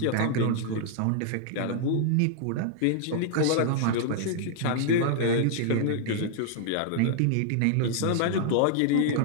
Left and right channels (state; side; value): different; both; correlation -0.01